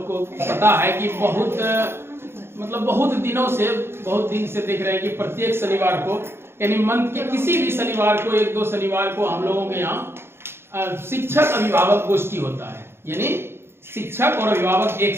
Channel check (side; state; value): left; late; 0.12 ms